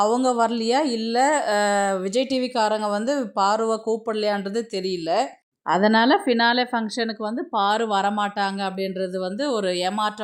அவங்க வரலையா, இல்லை விஜய் டிவிக்காரங்க வந்து பாருவை கூப்பிடலையான்றது தெரியல. அதனால் ஃபினாலே ஃபங்க்ஷனுக்கு வந்து பாரு வரமாட்டாங்க அப்படின்றது வந்து ஒரு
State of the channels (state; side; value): identical; both; correlation 1.00